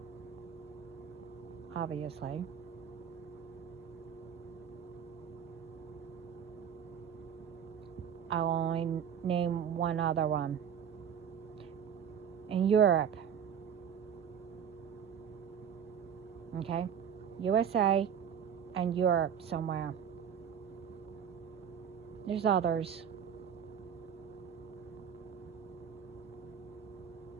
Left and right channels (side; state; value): left; quieter; 8.1 dB